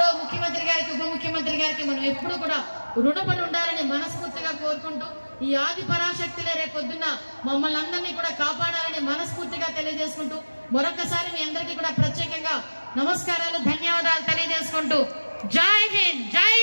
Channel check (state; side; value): inverted; both; correlation -1.00